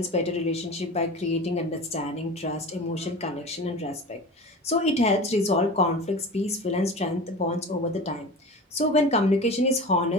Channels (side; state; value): both; normal; correlation 0.33